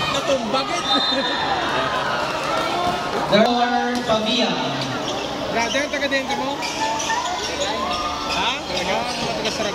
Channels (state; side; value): identical; both; correlation 1.00